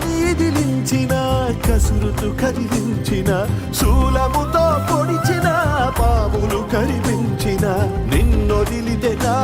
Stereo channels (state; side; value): identical; both; correlation 1.00